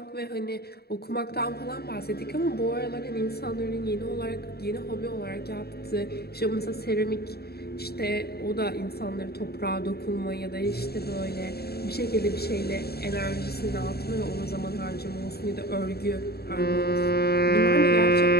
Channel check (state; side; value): late; right; 0.46 ms